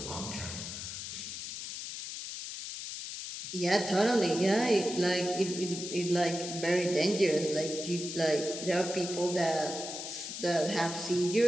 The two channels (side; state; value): left; noise; hiss, 7 dB below the sound